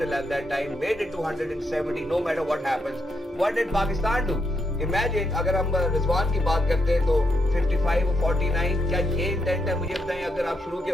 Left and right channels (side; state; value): both; normal; correlation 0.80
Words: at that time, made it to 170 no matter what happens. What did Pakistan do? Imagine अगर हम रिजवान की बात करते हैं तो 55 और 49, क्या ये इंटेंट है? मुझे बताएं, अगर आप शुरू के